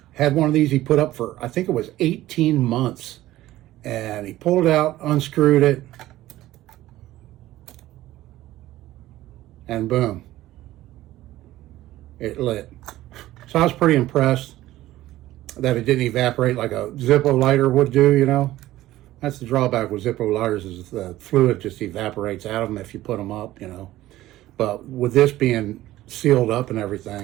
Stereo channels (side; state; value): left; quieter; 15.4 dB